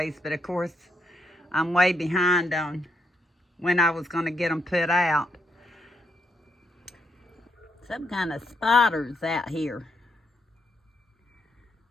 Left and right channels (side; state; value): both; normal; correlation 0.77